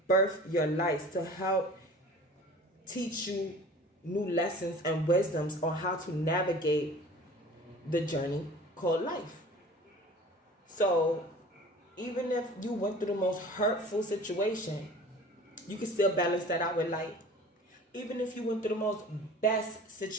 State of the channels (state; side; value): normal; both; correlation 0.43